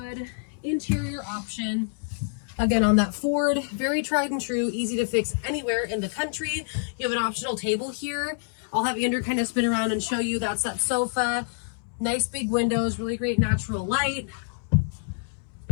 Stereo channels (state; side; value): silent; right; 60 dB below the other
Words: interior option. Again, on that Ford, very tried and true, easy to fix anywhere in the country. You have an optional table here. I'll have Andrew kind of spin around and show you. That's that sofa. Nice big windows, really great natural light.